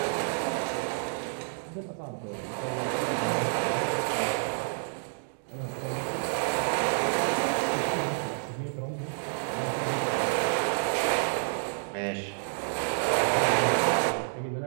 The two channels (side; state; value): left; silent; digital silence